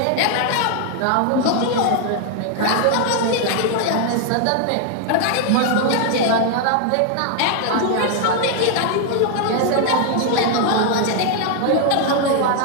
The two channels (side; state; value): both; different; correlation 0.00